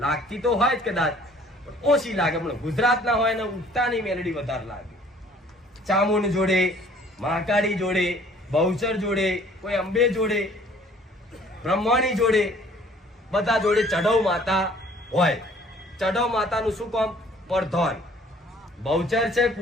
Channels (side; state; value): both; normal; correlation 0.55